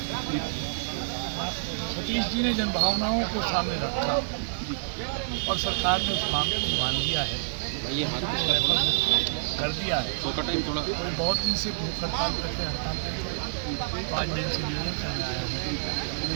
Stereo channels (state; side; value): silent; left; digital silence